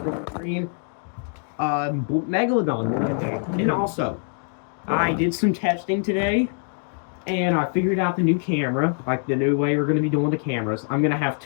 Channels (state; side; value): silent; right; 63 dB below the other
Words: Green. Megalodon. And also, I did some testing today, and I figured out the new camera, like the new way we're going to be doing the cameras. I'm going to have